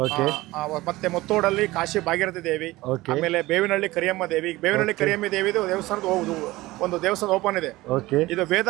ಮತ್ತೆ ಮುತ್ತೋಡಲ್ಲಿ ಕಾಶಿ ಭಾಗೀರಥಿ ದೇವಿ, ಆಮೇಲೆ ಬೇವಿನಹಳ್ಳಿ ಕರಿಯಮ್ಮ ದೇವಿ. ಬೇವಿನಹಳ್ಳಿ ಕರಿಯಮ್ಮ ದೇವಿ ದೇವಸ್ಥಾನದ ಒಂದು ದೇವಸ್ಥಾನ ಓಪನ್ ಇದೆ. ಇದು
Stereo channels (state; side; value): quieter; left; 18.9 dB